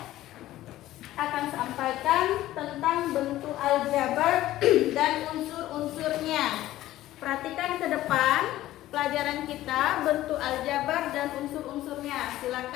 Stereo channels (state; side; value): quieter; right; 14.9 dB